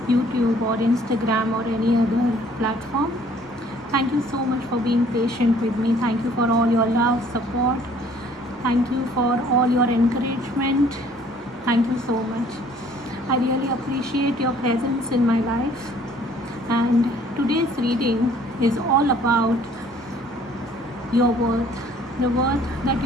YouTube or Instagram or any other platform, thank you so much for being patient with me. Thank you for all your love, support. Thank you for all your encouragement. Thank you so much. I really appreciate your presence in my life. And today's reading is all about your worth, the worth that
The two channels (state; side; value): normal; both; correlation 0.57